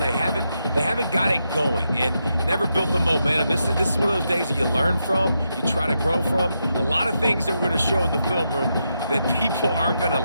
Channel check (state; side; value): inverted; both; correlation -0.84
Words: haven't got it going and never built the momentum. This is one of those days that you learn from, you try to grow from. A lot of things that we're going to show in the film room that people aren't going to